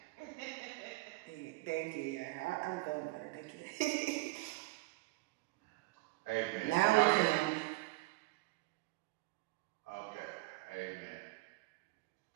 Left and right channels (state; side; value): quieter; left; 21.7 dB